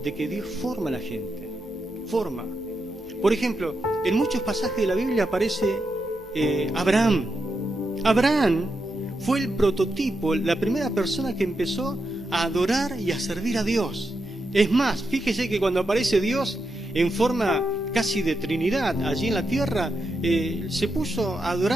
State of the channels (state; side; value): noise; right; hum, 29 dB below the sound